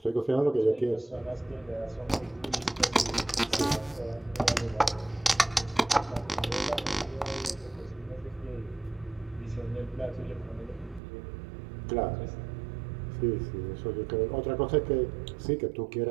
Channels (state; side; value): drops out; left; at 11.0 s